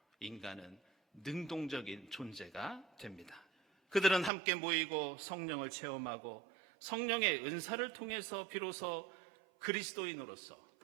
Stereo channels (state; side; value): drops out; left; at 4.3 s